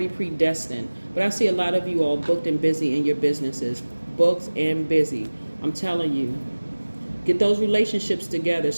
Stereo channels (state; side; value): inverted; both; correlation -1.00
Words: predestined. But I see a lot of you all booked and busy in your businesses, booked and busy. I'm telling you, get those relationships together.